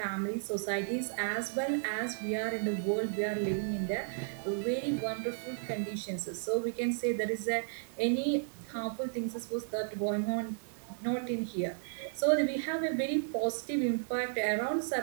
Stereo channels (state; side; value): silent; left; digital silence